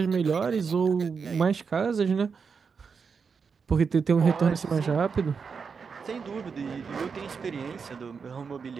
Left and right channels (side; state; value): left; quieter; 5.7 dB